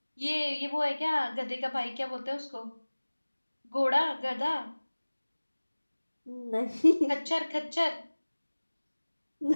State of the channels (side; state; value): both; inverted; correlation -1.00